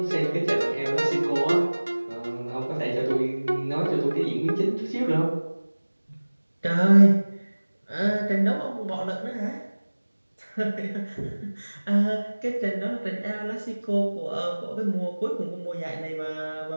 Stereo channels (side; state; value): both; inverted; correlation -1.00